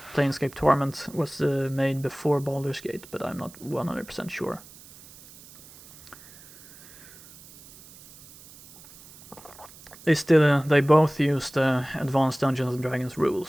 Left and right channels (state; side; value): noise; right; hiss, 21 dB below the sound